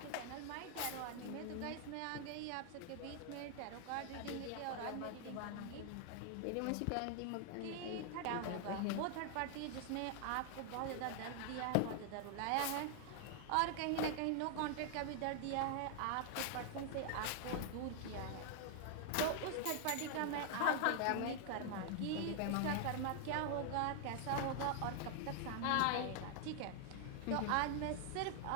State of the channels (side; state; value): both; different; correlation 0.00